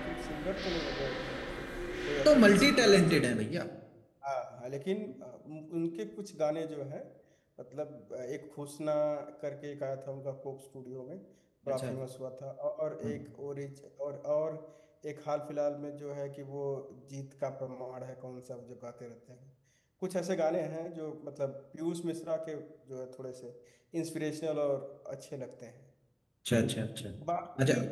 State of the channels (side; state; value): both; identical; correlation 1.00